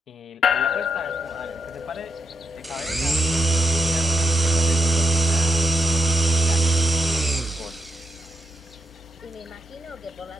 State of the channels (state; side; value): normal; both; correlation 0.82